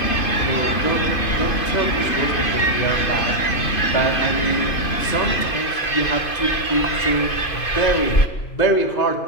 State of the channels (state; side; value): late; right; 2.5 ms